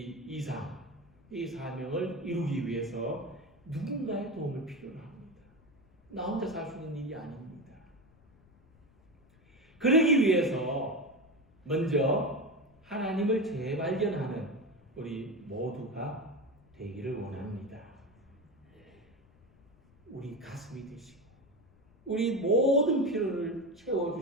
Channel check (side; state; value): left; noise; rumble, 29 dB below the sound